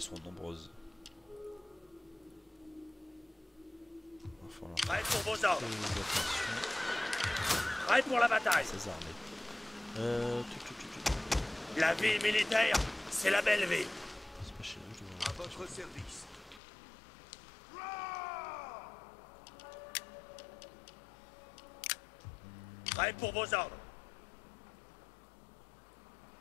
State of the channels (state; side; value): drops out; right; at 16.6 s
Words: sont nombreuses. Il va falloir Prêt pour vos ordres. faire attention Prêt pour la bataille. à ces armées. La vie militaire, c'est la belle vie. C'est pas chez nous, je À dois... votre votre service. Prêt pour vos ordres.